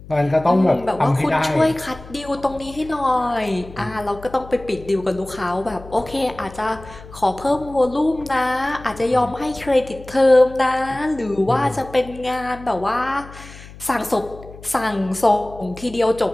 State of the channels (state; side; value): noise; left; hum, 18 dB below the sound